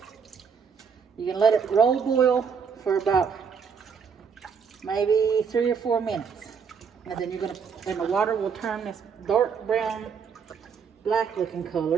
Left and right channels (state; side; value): quieter; left; 6.3 dB